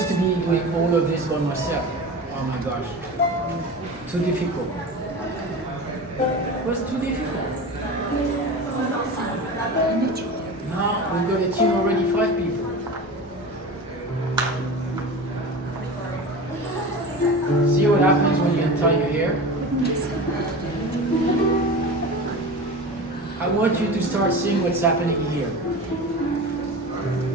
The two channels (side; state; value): both; normal; correlation 0.31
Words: to be doing all of this by myself. Oh my gosh. Too difficult. It was too difficult. Now we've got a team already 5 people. See what happens when you untie your hair? I want you to start seeing what's happening here.